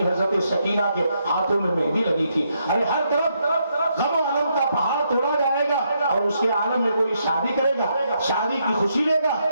حضرت سکینہ کے ہاتھوں میں مہندی لگی تھی۔ ارے ہر طرف غم و غم کا پہاڑ توڑا جائے گا اور اس کے عالم میں کوئی شادی کرے گا، شادی کی خوشی لے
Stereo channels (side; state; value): both; inverted; correlation -0.77